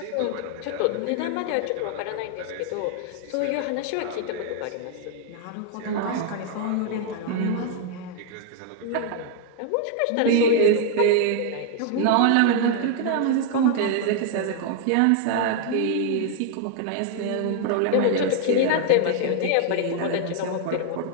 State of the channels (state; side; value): different; both; correlation 0.00